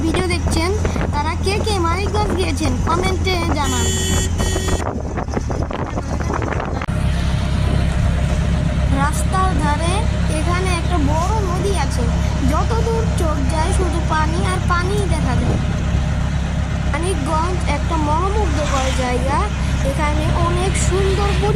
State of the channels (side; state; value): both; identical; correlation 1.00